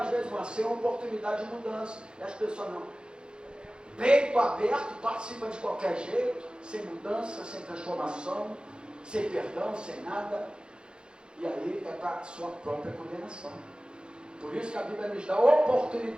vezes uma ceia é uma oportunidade de mudança. E as pessoas não. Peito aberto, participam de qualquer jeito, sem mudança, sem transformação, sem perdão, sem nada. E aí é para a sua própria condenação. Por isso que a Bíblia nos dá a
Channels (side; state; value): left; late; 0.050 ms